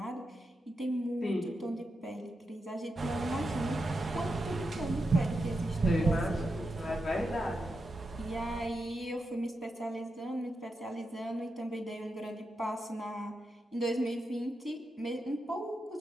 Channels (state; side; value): normal; both; correlation 0.87